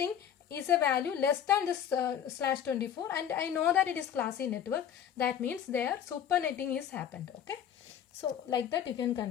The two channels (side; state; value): right; quieter; 9.2 dB